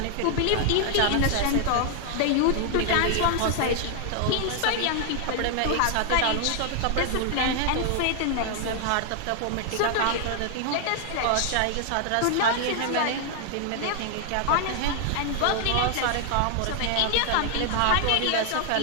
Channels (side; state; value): both; different; correlation 0.00